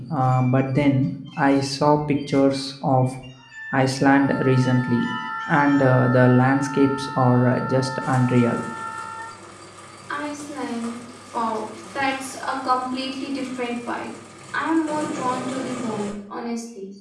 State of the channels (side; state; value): both; identical; correlation 1.00